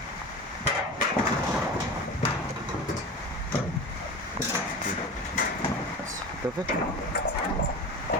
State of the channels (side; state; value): both; normal; correlation 0.31